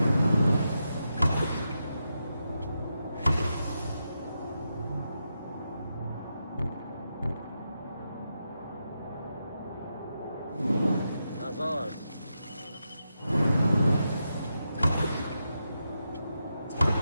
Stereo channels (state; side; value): inverted; both; correlation -0.86